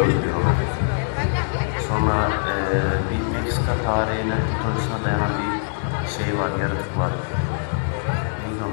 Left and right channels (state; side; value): silent; right; digital silence